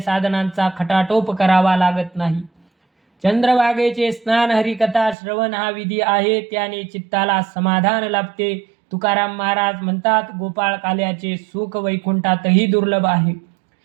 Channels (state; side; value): drops out; left; at 5.2 s